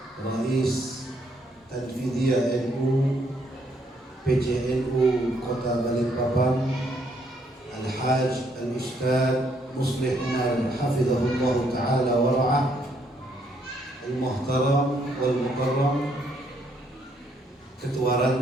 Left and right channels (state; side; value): normal; both; correlation 0.71